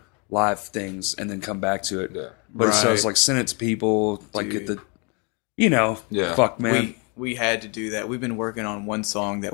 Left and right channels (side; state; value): right; quieter; 33.4 dB